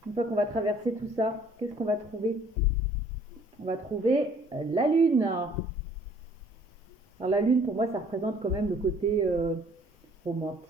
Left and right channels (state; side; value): normal; both; correlation 0.57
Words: fois qu'on va traverser tout ça, qu'est-ce qu'on va trouver? On va trouver la lune. Alors, la lune, pour moi, ça représente quand même le côté